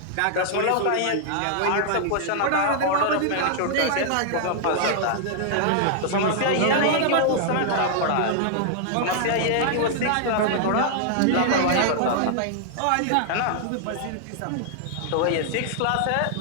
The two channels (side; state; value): both; different; correlation -0.01